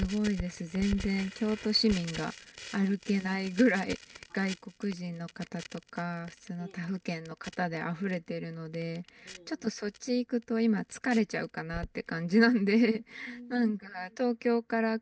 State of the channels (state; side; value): identical; both; correlation 1.00